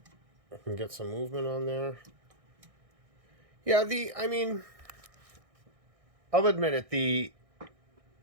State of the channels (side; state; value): left; late; 1.6 ms